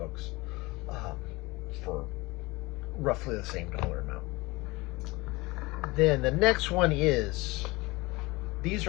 for roughly the same dollar amount. Then the next one is, these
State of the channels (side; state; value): right; quieter; 22.8 dB